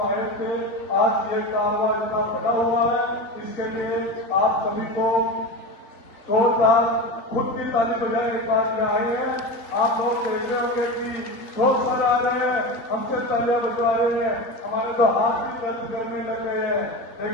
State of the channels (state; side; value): late; right; 3.5 ms